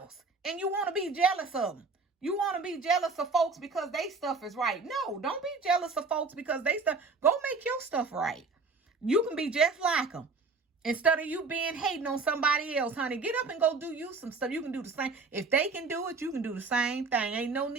and you want to be jealous of them. You want to be jealous of folks because they stuff is right. No, don't be jealous of folks because they stuff. Go make your stuff right. You can be just like them. Instead of you being hating on somebody else, honey, get up and go do you some stuff. You can do the same. If they can do it, you can do the same thing. Ain't no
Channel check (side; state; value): left; quieter; 4.1 dB